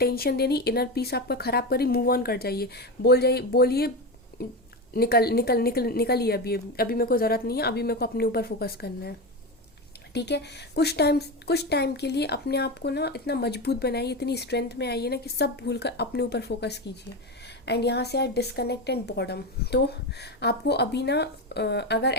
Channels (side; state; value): both; normal; correlation 0.18